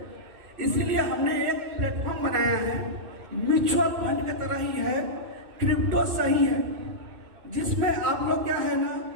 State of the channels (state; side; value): late; left; 2.6 ms